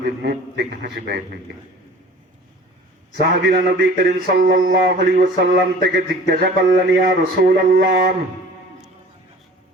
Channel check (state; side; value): normal; both; correlation 0.45